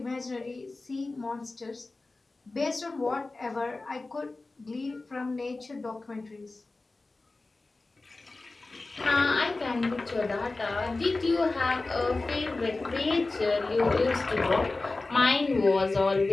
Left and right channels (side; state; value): right; quieter; 3.3 dB